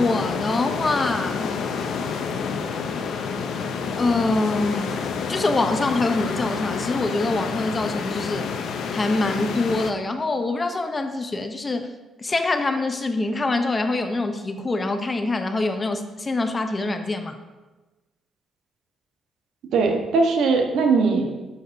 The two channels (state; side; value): normal; both; correlation 0.80